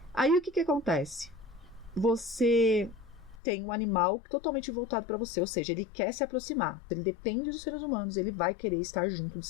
Aí o que acontece? Você tem um animal totalmente voltado para você, ou seja, ele quer se aproximar. Ele depende dos seres humanos, ele vai querer estar junto dos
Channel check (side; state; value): right; drops out; at 3.4 s